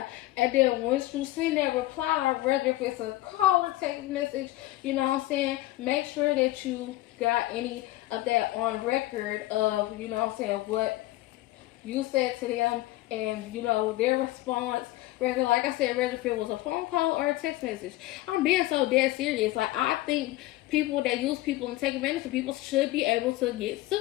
and then once you send that reply, whether if it's a call or text message, you know what I'm saying, make sure that you got any of that on record of, you know what I'm saying, what you said to them, and, you know, their response, whether, like I said, whether if it was a phone call or a text message. I'm being so dead serious. Like, I think people that use people and take advantage of people should be able to get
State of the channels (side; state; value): right; quieter; 17.0 dB